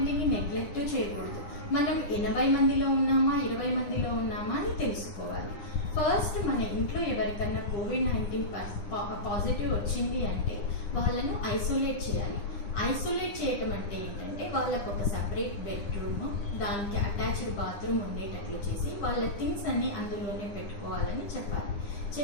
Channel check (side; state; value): right; late; 9.9 ms